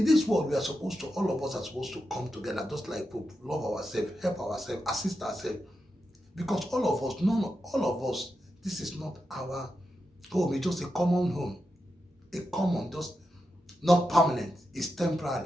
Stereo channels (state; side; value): normal; both; correlation 0.88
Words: this world, we are supposed to, all of us are supposed to come together, just like Pope, love ourselves, help ourselves, assist ourselves. Because all of us, this is not our home. It's just a common home. A common, just not permanent. It's